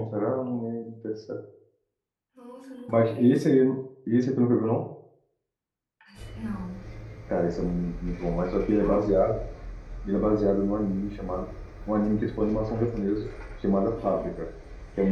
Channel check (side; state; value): both; identical; correlation 1.00